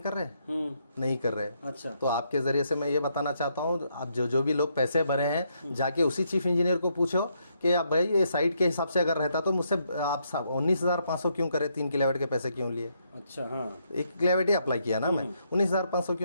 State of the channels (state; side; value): inverted; both; correlation -0.76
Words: कर रहे हैं? नहीं कर रहे। अच्छा, तो आपके जरिए से मैं ये बताना चाहता हूँ, आप जो भी लोग पैसे भरे रहे हैं, जाके उसी चीफ इंजीनियर को पूछो कि अब भाई ये साइट के हिसाब से अगर रहता तो मुझसे आप 19,500 क्यों करे, 3 किलोवाट के पैसे क्यों लिए? अच्छा, हाँ, 1 किलोवाट ही अप्लाई किया ना मैं, 19,500